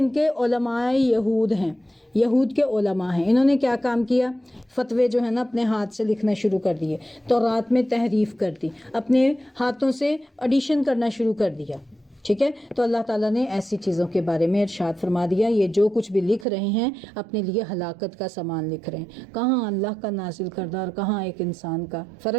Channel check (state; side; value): drops out; left; at 16.4 s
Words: کے علماء یہود ہیں، یہود کے علماء ہیں. انہوں نے کیا کام کیا؟ فتوے جو ہے نا اپنے ہاتھ سے لکھنا شروع کر دیے، تورات میں تحریف کر دی، اپنے ہاتھوں سے ایڈیشن کرنا شروع کر دیا. ٹھیک ہے. تو اللہ تعالیٰ نے ایسی چیزوں کے بارے میں ارشاد فرما دیا یہ جو کچھ بھی لکھ رہے ہیں اپنے لیے ہلاکت کا سامان لکھ رہے ہیں. کہاں اللہ کا نازل کردہ اور کہاں ایک انسان کا